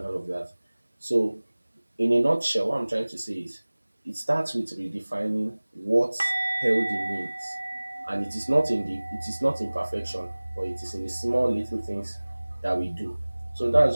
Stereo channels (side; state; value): both; inverted; correlation -1.00